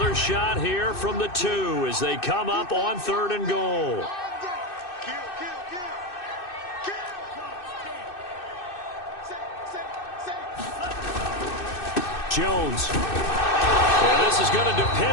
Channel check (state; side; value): late; right; 2.6 ms